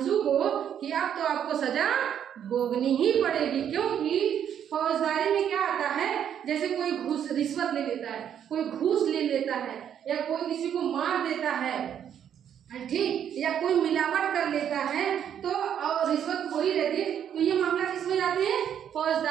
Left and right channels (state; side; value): quieter; left; 9.2 dB